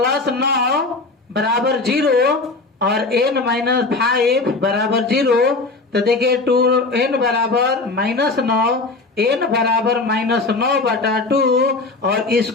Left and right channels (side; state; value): right; quieter; 3.5 dB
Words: 9 बराबर 0 और n माइनस 5 बराबर 0। तो देखिए 2n बराबर -9, n बराबर -9/2, और